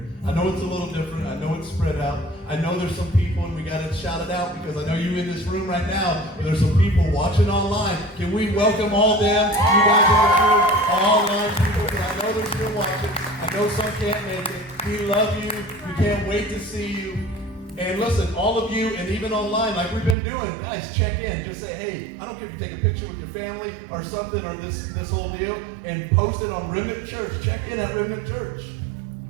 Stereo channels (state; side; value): drops out; left; at 20.2 s